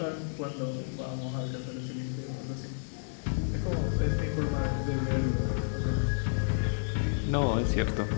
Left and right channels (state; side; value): silent; right; digital silence